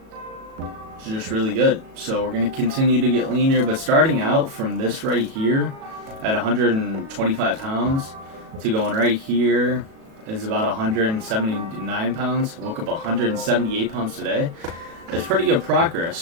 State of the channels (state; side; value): late; left; 37 ms